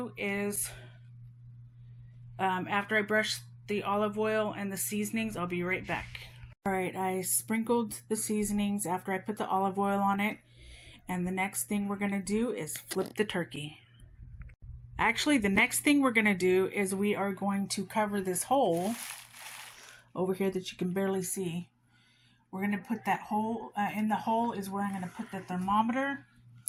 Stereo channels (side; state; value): both; identical; correlation 1.00